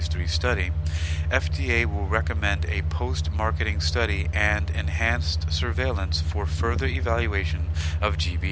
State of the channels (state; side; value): identical; both; correlation 1.00